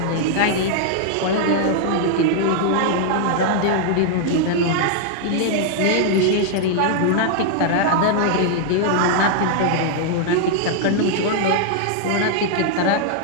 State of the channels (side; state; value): both; different; correlation -0.01